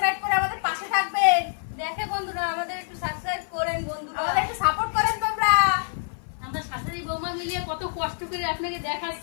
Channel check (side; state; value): right; silent; 57 dB below the other